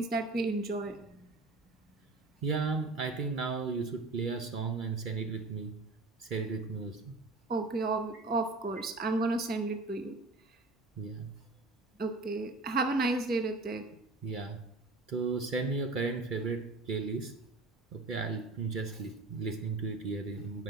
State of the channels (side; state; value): left; quieter; 3.3 dB